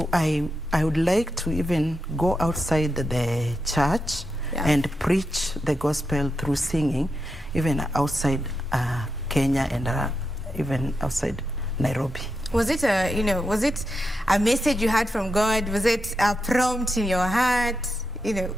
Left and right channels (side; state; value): both; normal; correlation 0.87